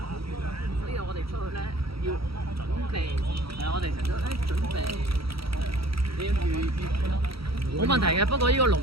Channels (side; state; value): left; late; 0.75 ms